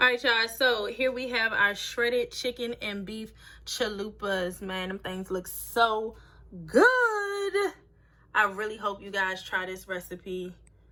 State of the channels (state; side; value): identical; both; correlation 1.00